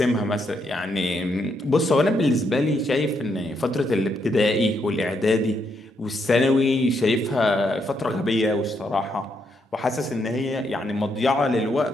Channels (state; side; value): normal; both; correlation 0.77